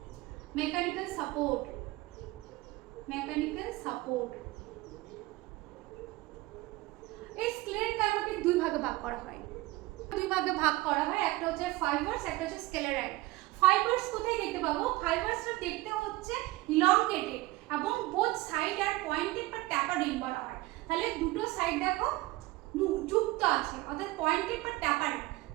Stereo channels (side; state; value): left; quieter; 19.6 dB